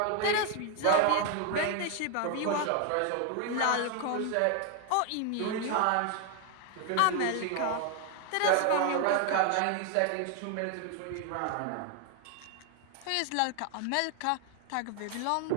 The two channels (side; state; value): both; different; correlation 0.00